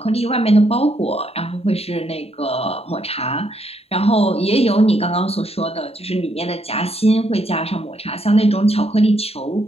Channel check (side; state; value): right; late; 0.29 ms